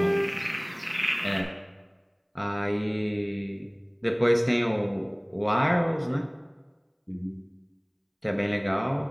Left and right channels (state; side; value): identical; both; correlation 1.00